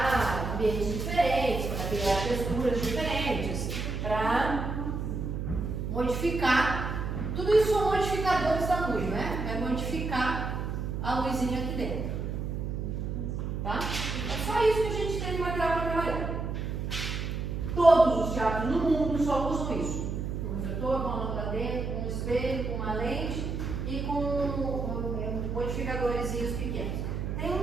ambientes diferentes, para criar texturas diferentes, para modificar. Tudo isso são modificadores da luz, né? É modificar a luzinha aqui dentro. Tá? É só isso que a gente tem de material para trabalhar. Todos os teatros no mundo só usam isso. Um refletor, com uma lâmpada dentro, com um espelho, com uma lente e com modificadores pequenos. Tem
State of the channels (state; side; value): noise; right; hum, 3 dB below the sound